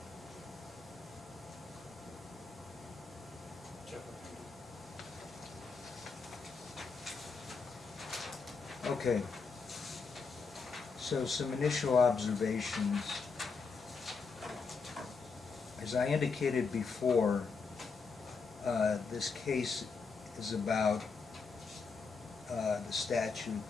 Okay. So some initial observations. As I indicated before, this case is about the statute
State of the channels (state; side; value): quieter; right; 4.9 dB